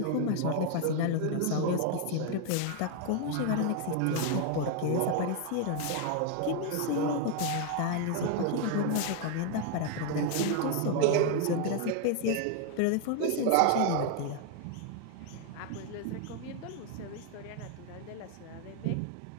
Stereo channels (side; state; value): both; different; correlation 0.01